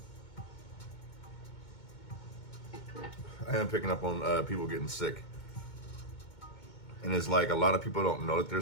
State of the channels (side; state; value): right; late; 2.2 ms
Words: I am picking up on people getting sick. And it's like a lot of people don't know that they're